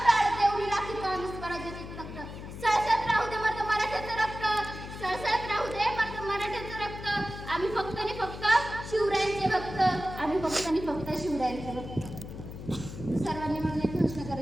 प्राण देऊन राखतो आम्ही स्वराज्याचे तख्त. सळसळत राहू दे मर्द मराठ्याचं रक्त, सळसळत राहू दे मर्द मराठ्याचं रक्त. आम्ही फक्त आणि फक्त शिवरायांचे भक्त, आम्ही फक्त आणि फक्त शिवरायांचे भक्त. सर्वांनी म्हणून एक घोषणा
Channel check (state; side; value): noise; left; hum, 11 dB below the sound